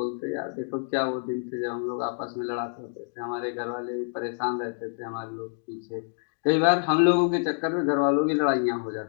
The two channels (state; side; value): silent; right; digital silence